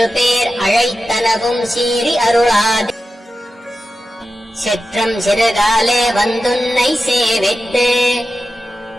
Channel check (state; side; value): normal; both; correlation 0.92